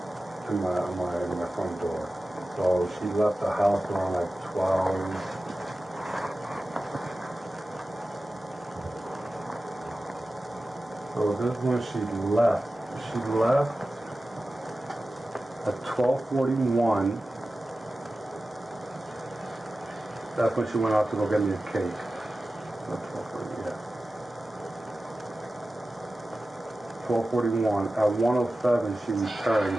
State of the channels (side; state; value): both; normal; correlation 0.95